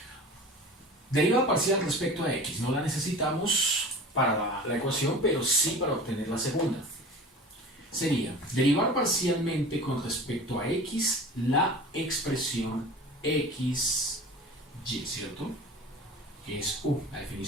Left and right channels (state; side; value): normal; both; correlation 0.38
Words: Derivada parcial respecto a x, no la necesitamos para la ecuación, pero sí para obtener la segunda. Sería derivar parcialmente con respecto a x la expresión xy, ¿cierto? Que es u, la